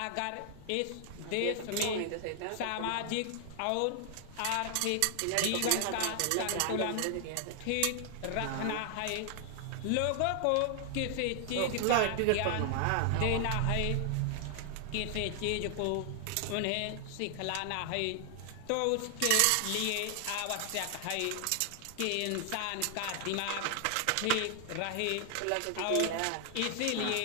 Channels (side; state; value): both; different; correlation 0.00